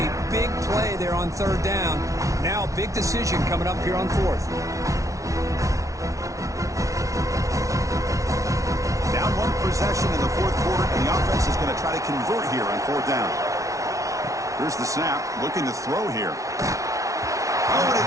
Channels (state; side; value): late; left; 0.16 ms